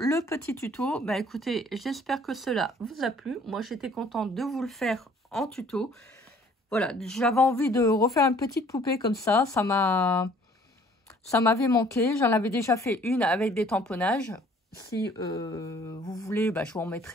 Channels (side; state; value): both; normal; correlation 0.56